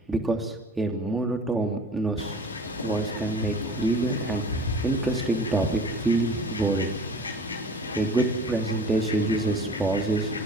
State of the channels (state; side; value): normal; both; correlation 0.44